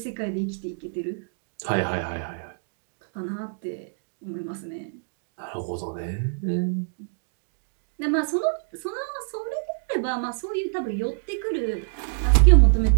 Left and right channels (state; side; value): silent; left; digital silence